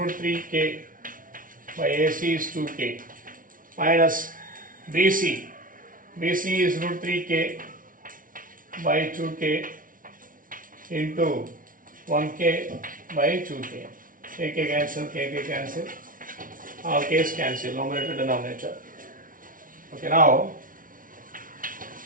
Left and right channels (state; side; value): late; left; 0.39 ms